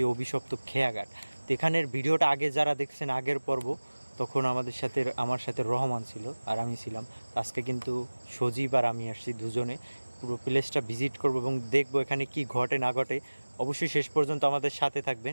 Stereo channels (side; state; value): both; inverted; correlation -1.00